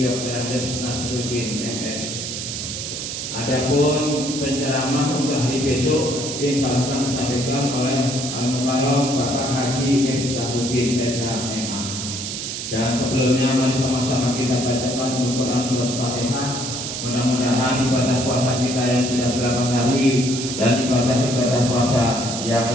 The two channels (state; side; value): noise; right; hiss, 5 dB below the sound